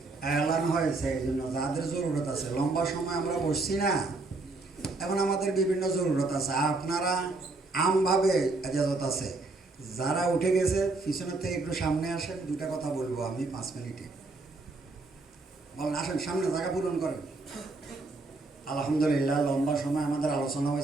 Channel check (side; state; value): left; quieter; 3.4 dB